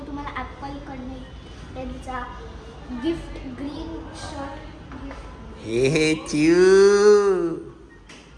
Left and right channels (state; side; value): identical; both; correlation 1.00